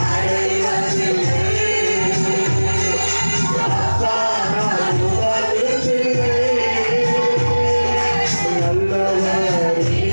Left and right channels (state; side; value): inverted; both; correlation -1.00